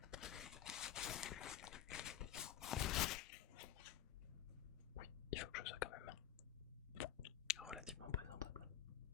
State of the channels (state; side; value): quieter; right; 11.2 dB